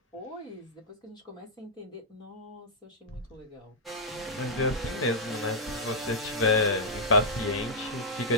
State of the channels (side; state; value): both; normal; correlation -0.09